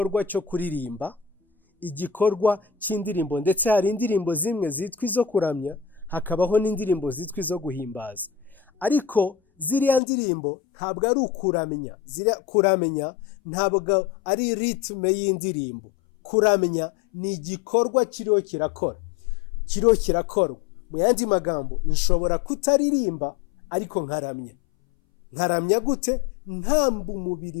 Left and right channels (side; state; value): right; drops out; at 10.0 s